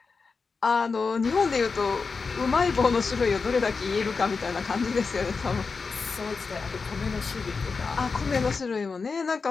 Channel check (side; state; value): right; quieter; 4.7 dB